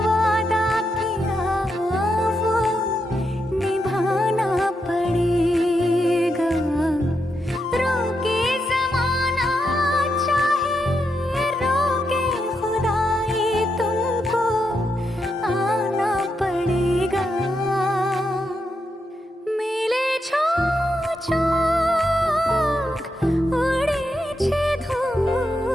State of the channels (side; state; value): both; normal; correlation 0.83